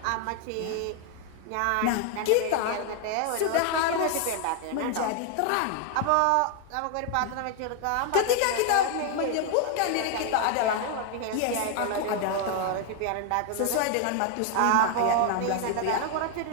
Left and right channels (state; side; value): different; both; correlation 0.00